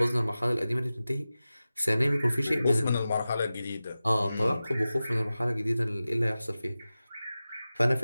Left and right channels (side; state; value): both; inverted; correlation -0.95